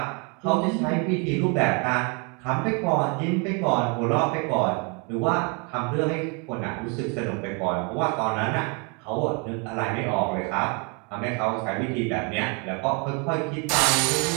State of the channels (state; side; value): quieter; left; 33.9 dB